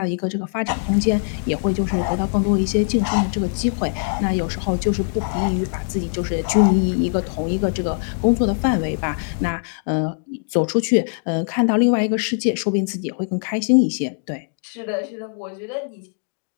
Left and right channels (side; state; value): right; silent; digital silence